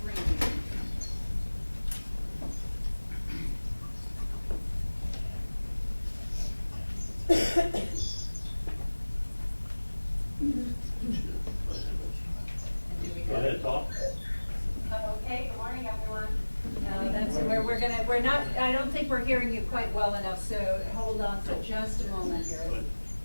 we're not, I don't think we're hearing you quite well enough, so hold on for just a moment here.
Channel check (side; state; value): both; inverted; correlation -1.00